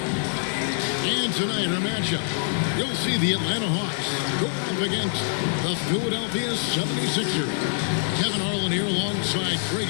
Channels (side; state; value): right; silent; digital silence